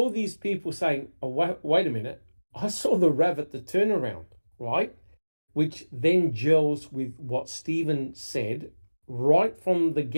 these people saying, oh, wait a minute, I saw the RAV at the turnaround, right? Which then gels with what Stephen said right from the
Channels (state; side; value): inverted; both; correlation -1.00